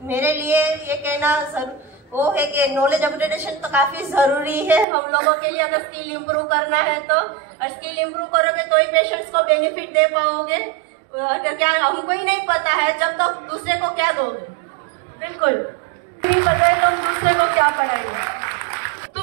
मेरे लिए ये कहना वो है कि नॉलेज अपग्रेडेशन तो काफी जरूरी है हम लोगों के लिए. अगर स्किल इंप्रूव करना है तो, और स्किल इंप्रूव करोगे तो ही पेशेंट्स को बेनिफिट दे पाओगे. अगर क्या हमको ही नहीं पता है जब तक दूसरे को क्या दोगे. बिल्कुल नहीं पता है तुम दूसरे को क्या पढ़ाओगे.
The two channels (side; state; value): left; drops out; at 4.9 s